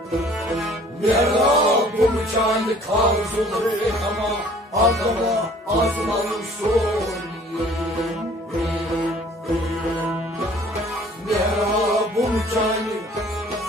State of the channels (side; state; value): both; normal; correlation 0.53